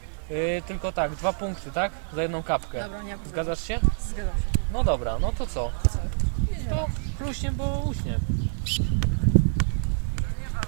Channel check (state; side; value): silent; left; digital silence